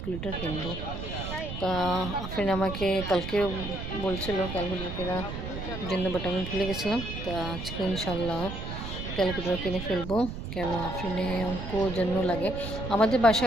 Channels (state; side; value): noise; right; rumble, 6 dB below the sound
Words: কিনবো। তা আফরিন আমাকে কালকে বলছিল ক্যালকুলেটর কেনার জন্য, বাট আমি ভুলে গেছিলাম। তা আজকে ইনশাল্লাহ ক্যালকুলেটর কিনে ফেলবো, কেন আফরিনে অঙ্ক জন্য লাগে। আমাদের